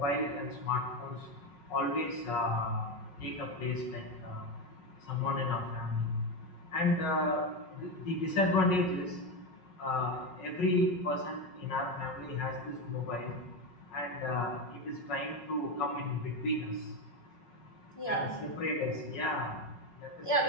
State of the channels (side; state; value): right; late; 5.4 ms